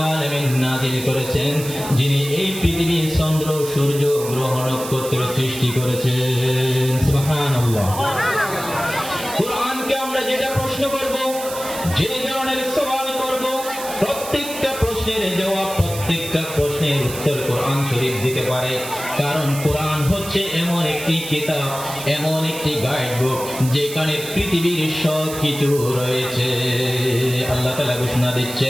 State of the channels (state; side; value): noise; right; hiss, 10 dB below the sound